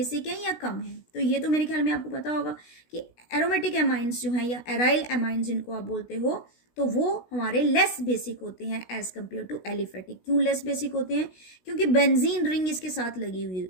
हैं या कम हैं। तो ये तो मेरे ख्याल में आपको पता होगा कि एरोमेटिक अमाइंस जो हैं या एराइल अमाइंस जिनको आप बोलते हो, तो वो हमारे लेस बेसिक होते हैं एज कम्पेयर टू एलिफेटिक। क्यों लेस बेसिक होते हैं, क्योंकि बेंजीन रिंग इसके साथ लगी हुई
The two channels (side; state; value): right; late; 16 ms